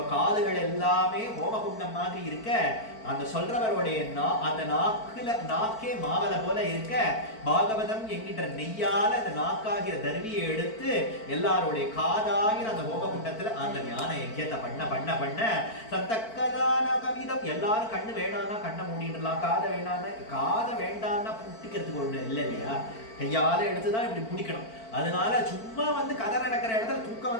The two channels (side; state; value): right; late; 4.5 ms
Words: காதுகள் எல்லாமே ஹோமகுண்டம் மாதிரி இருக்க, அந்த சொல்றவருடைய அந்த நாக்கே மாவல போல இருக்க, பாகவதம் என்கின்ற நெய்யால அந்த நாக்காகிற தர்வியை எடுத்து எல்லாருடைய காதாகிற அந்த ஹோமகுண்டத்துல அந்த ஞான யஜ்யத்தை பண்ண சந்தக்கதான கவிதம். எல்லாரும் கண்ணு வேணாம்னா கண்ணை மூடிடலாம், காதை வேண்டாம்னா புட்டிக்கிறதுக்கு ஒண்ணு இல்லை இல்லையா, கையால எடுத்துதான் இப்படி பிடிக்கணும். அதனால சும்மா வந்து கதை நடக்கிற இடத்துல தூக்கம்